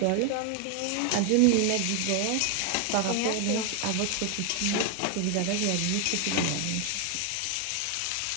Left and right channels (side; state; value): both; different; correlation 0.01